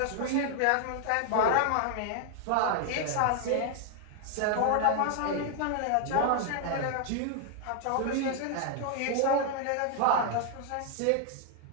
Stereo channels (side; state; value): both; different; correlation 0.00